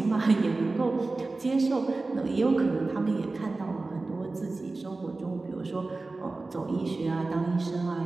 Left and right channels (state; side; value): quieter; left; 3.4 dB